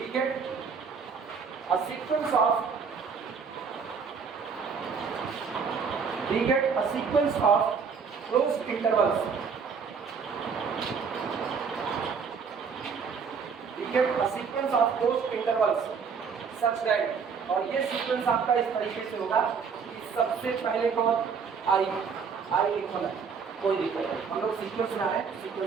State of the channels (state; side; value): quieter; left; 5.9 dB